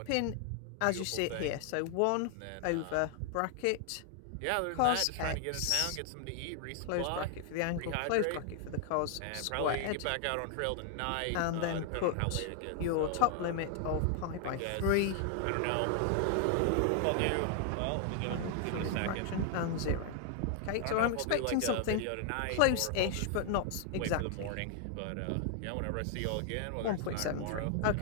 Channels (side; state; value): both; different; correlation 0.00